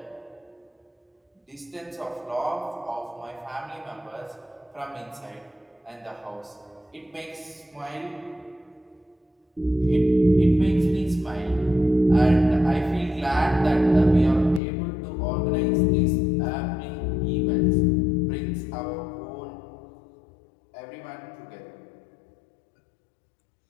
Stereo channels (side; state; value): right; drops out; at 14.6 s